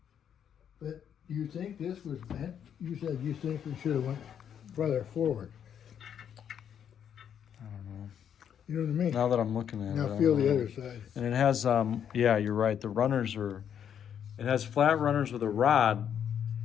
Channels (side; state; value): right; quieter; 8.7 dB